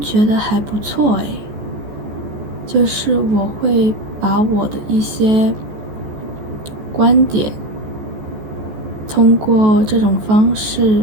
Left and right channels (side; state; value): left; late; 14 ms